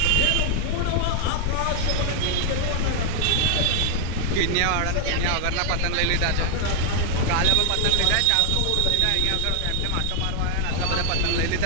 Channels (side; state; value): both; different; correlation 0.00